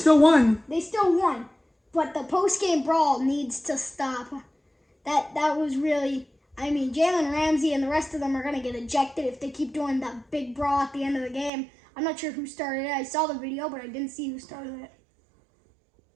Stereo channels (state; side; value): drops out; left; at 11.5 s